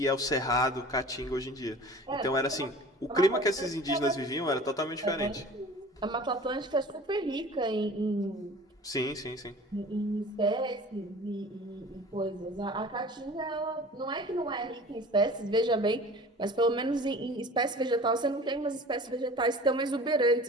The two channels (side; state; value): both; normal; correlation 0.43